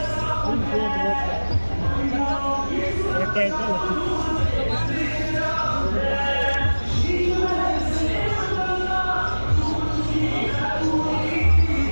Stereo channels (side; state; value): both; inverted; correlation -1.00